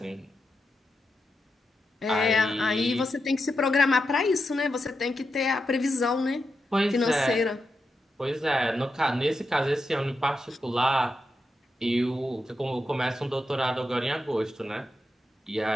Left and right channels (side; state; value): both; normal; correlation 0.87